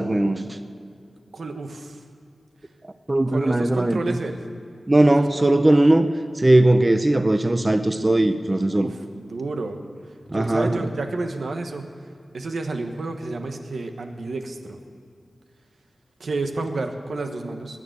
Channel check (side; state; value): both; normal; correlation 0.98